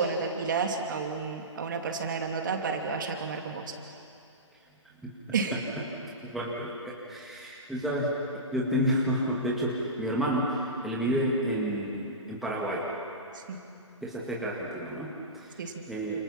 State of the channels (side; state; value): both; normal; correlation -0.18